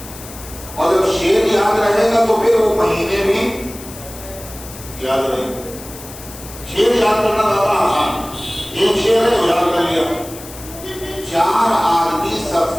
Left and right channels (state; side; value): noise; left; hiss, 15 dB below the sound